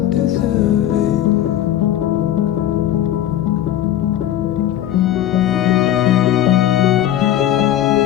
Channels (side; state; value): right; quieter; 12.1 dB